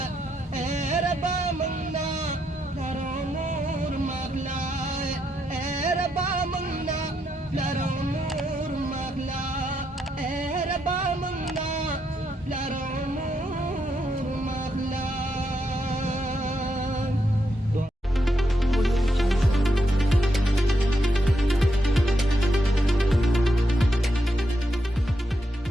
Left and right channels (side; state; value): both; normal; correlation 0.81